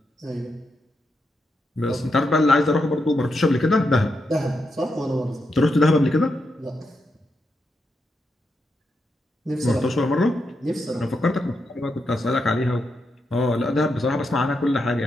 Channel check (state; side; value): normal; both; correlation 0.84